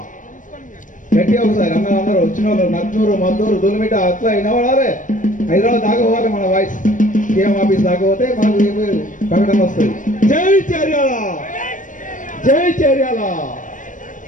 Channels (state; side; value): late; right; 0.38 ms